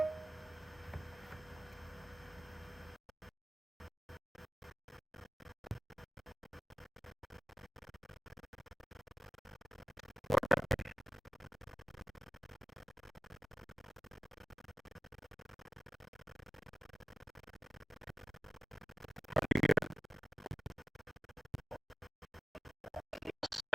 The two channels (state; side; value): normal; both; correlation 0.95